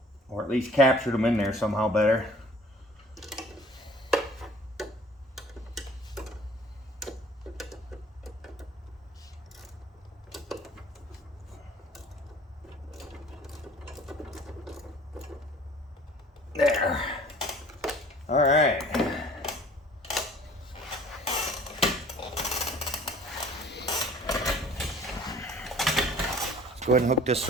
Or at least captured them in there somehow better. There. All right. Go ahead and hook this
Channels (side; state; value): both; normal; correlation 0.50